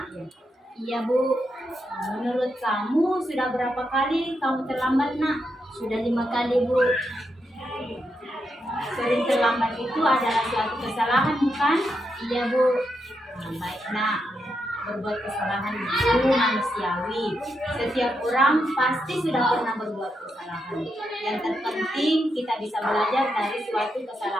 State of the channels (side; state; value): both; normal; correlation 0.83